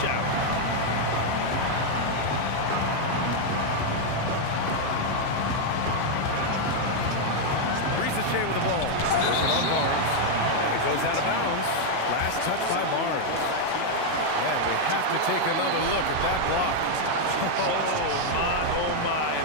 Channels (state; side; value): different; both; correlation 0.00